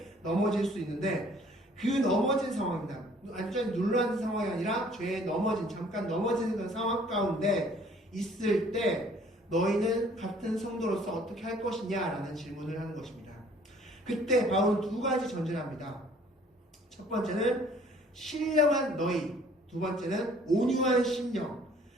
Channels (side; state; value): both; normal; correlation 0.56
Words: 넘어질 수 있는데 그 넘어진 상황입니다. 완전히 눌러앉은 상황이 아니라 죄에 넘어진, 잠깐 넘어지는 그런 상황 가운데 있을 때 너희는 같은 성도로서 어떻게 할 것이냐라는 질문을 하는 것입니다. 그때 바울은 두 가지 전제를 합니다. 첫 번째는 신령한 너희, 두 번째는 온유한 심령.